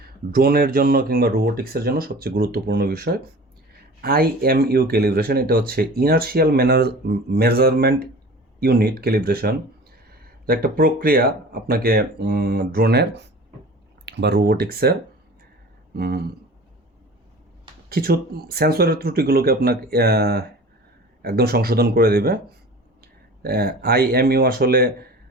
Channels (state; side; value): normal; both; correlation 0.41